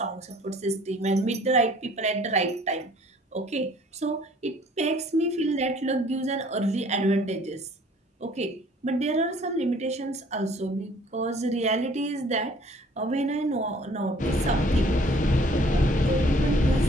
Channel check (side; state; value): both; normal; correlation 0.56